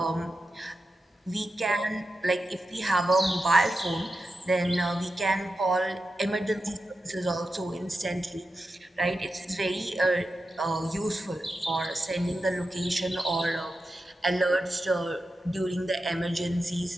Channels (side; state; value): both; normal; correlation 0.90